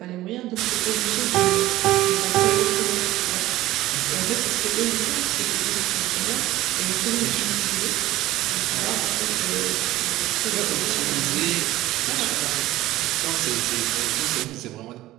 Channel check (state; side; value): quieter; left; 16.3 dB